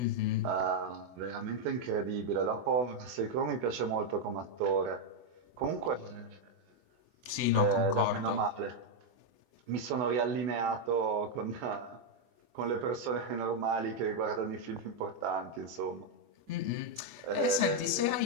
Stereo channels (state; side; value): late; left; 24 ms